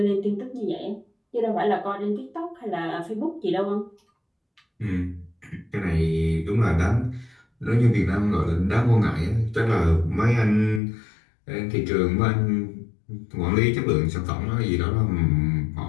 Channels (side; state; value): right; drops out; at 10.8 s